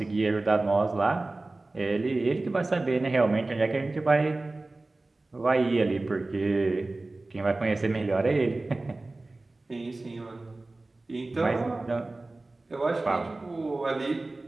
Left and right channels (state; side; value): quieter; left; 3.1 dB